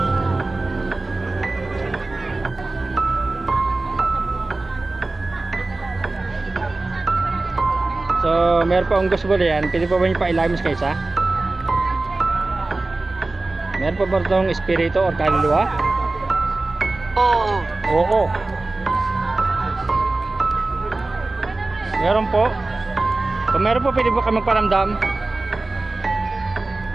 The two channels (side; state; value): left; quieter; 3.1 dB